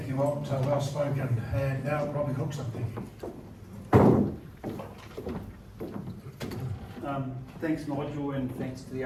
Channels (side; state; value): both; identical; correlation 1.00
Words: you, Walt. Well spoken. And now Robbie Cookson, thank you. Thanks, Nigel, and thanks to the